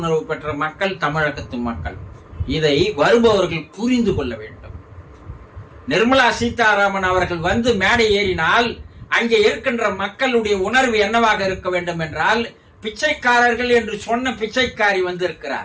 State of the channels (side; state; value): both; identical; correlation 1.00